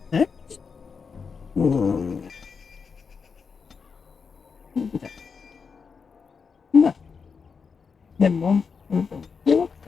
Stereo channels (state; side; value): quieter; right; 5.6 dB